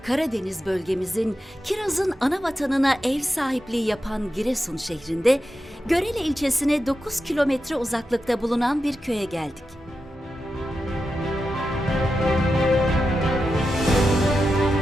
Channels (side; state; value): both; normal; correlation 0.89